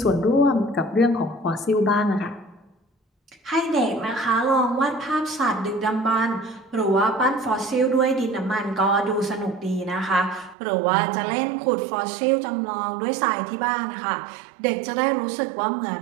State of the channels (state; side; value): drops out; left; at 10.6 s